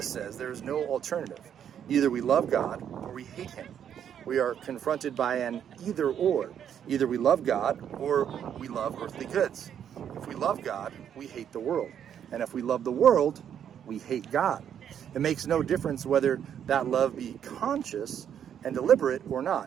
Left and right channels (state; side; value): quieter; left; 9.0 dB